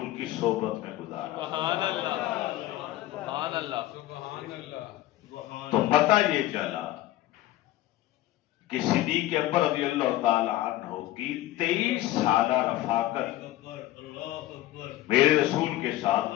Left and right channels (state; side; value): quieter; right; 15.4 dB